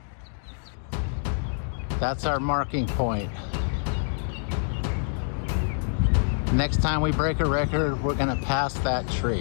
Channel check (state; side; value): silent; right; digital silence